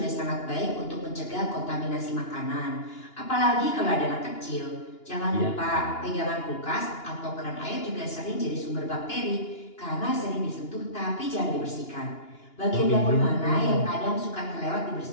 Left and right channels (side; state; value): right; late; 2.9 ms